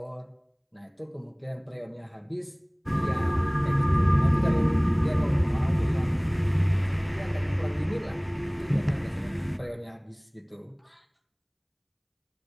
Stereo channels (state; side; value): identical; both; correlation 1.00